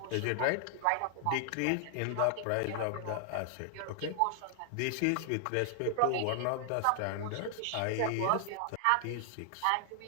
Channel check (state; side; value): different; both; correlation 0.00